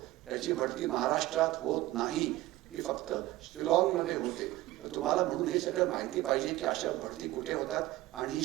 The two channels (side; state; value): left; quieter; 16.8 dB